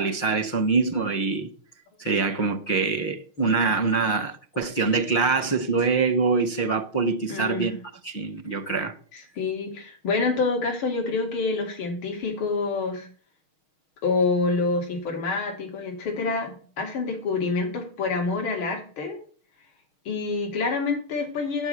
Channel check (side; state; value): right; late; 6.4 ms